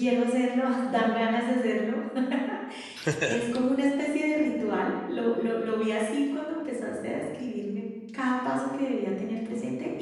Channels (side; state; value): both; identical; correlation 1.00